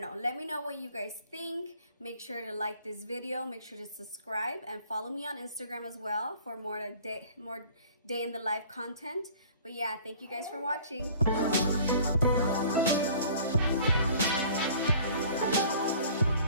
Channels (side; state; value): both; inverted; correlation -0.50